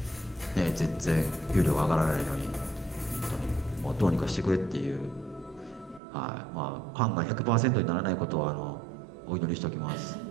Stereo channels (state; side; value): drops out; left; at 6.0 s